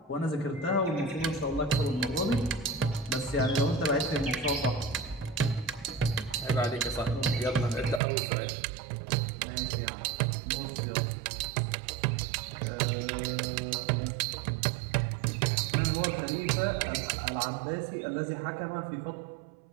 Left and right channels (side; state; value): left; drops out; at 8.0 s